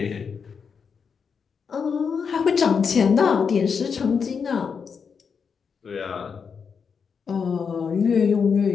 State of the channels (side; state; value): right; quieter; 6.1 dB